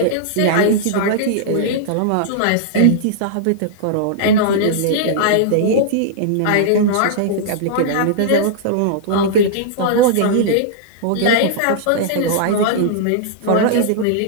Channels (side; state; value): both; different; correlation -0.02